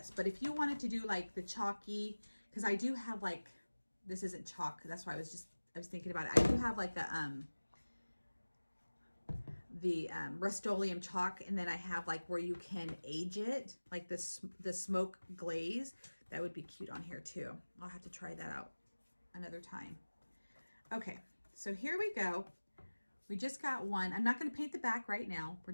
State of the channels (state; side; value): inverted; both; correlation -1.00